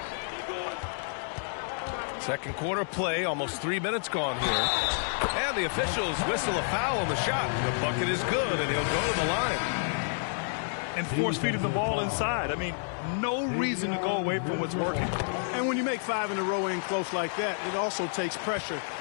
Second quarter play, almost 3 minutes gone here. And the officials whistle a foul on the shot. The bucket is good, and he'll go to the line. And force-feeding the ball inside. I mean, no reason to go away from what's working. And when you make 5 in a row in close like that, it also takes pressure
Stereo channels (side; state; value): right; silent; 58 dB below the other